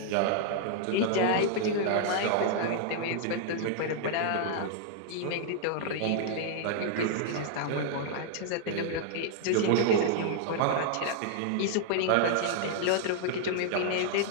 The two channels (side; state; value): both; different; correlation -0.01